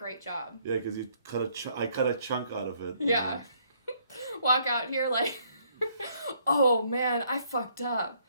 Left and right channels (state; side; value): inverted; both; correlation -0.67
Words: job. Yeah, because you I cut a chunk out of it. Yeah. Walk out here like, oh man, I fucked up.